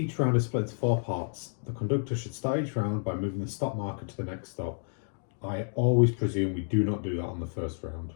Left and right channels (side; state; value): right; silent; digital silence